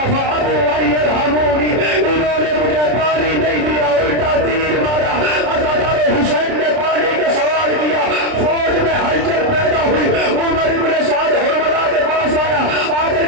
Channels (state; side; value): late; left; 30 ms